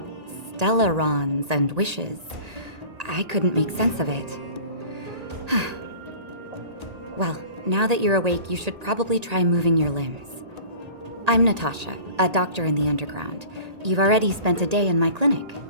stellarons and wishes. I couldn't make sense of it. Well, now that you're awake, you should probably try moving your limbs. I'm Natasha, a doctor in the underground. You've already spent a day in my clinic.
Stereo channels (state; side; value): late; left; 1.8 ms